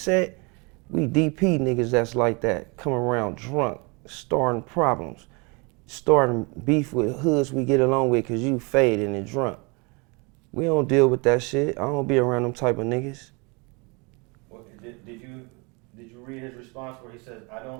we DP niggas that's like that, come around drunk, starting problems, starting beef with hoods we get along with, cause you faded and drunk. We don't deal with that shit. I don't be around them type of niggas. Well, did you read his response where he says, "I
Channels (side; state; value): left; quieter; 30.1 dB